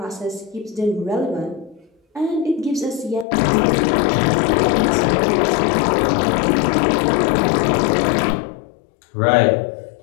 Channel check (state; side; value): drops out; right; at 3.2 s